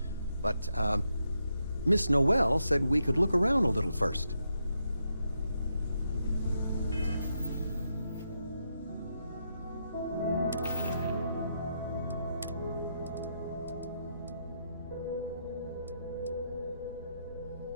but Miss Noel said we could look around a little first.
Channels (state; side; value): inverted; both; correlation -0.81